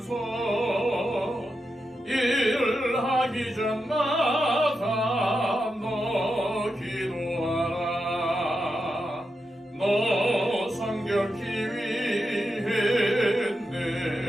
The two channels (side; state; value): both; normal; correlation 0.87